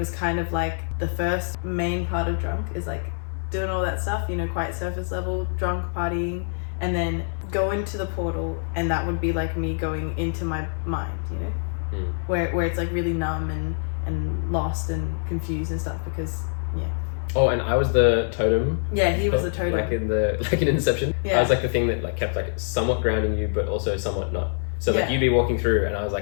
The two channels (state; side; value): silent; right; digital silence